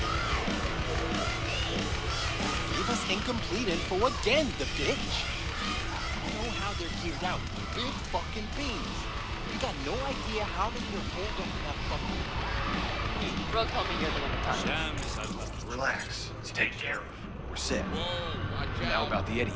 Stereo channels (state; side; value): identical; both; correlation 1.00